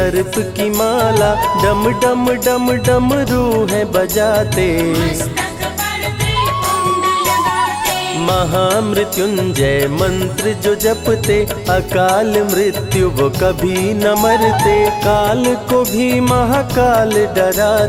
की माला, डम डम डम डम रूह बजाते। मस्तक पर त्रिपुंड लगाते, महामृत्युंजय मंत्र जो जपते, अकाल मृत्यु वो कभी न मरते, काल को भी महाकाल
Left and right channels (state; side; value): identical; both; correlation 1.00